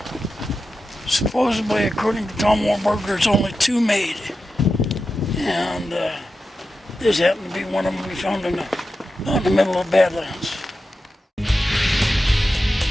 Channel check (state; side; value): normal; both; correlation 0.91